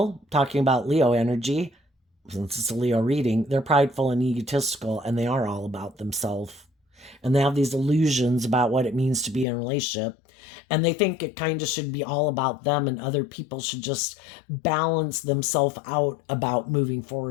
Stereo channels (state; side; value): drops out; right; at 9.5 s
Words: talking about Leo energy, since it's a Leo reading, they're prideful and egotistical, and they are all about themselves. And they have these illusions about what it means to be in a relationship. And they think it kind of should be all about them, and other people should just balance themselves out about moving